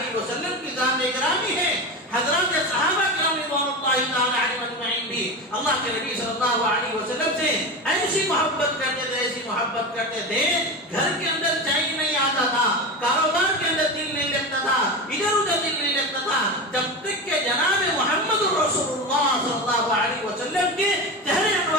وسلم کی ذات گرامی ہے۔ حضرات صحابہ کرام رضوان اللہ تعالی علیہم اجمعین بھی اللہ کے نبی صلی اللہ علیہ وسلم سے ایسی محبت کرتے تھے، ایسی محبت کرتے تھے، گھر کے اندر چین نہیں آتا تھا، کاروبار کے اندر دل نہیں لگتا تھا، ادھر ادھر دل نہیں لگتا تھا، جب تک کہ جناب محمد رسول اللہ صلی اللہ علیہ وسلم کے چہرے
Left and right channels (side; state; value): both; normal; correlation 0.23